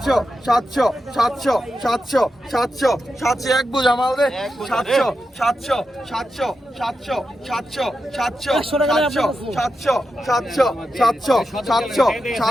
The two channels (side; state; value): both; normal; correlation 0.88